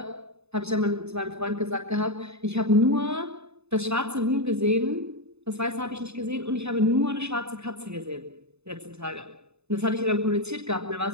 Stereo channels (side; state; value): left; late; 0.80 ms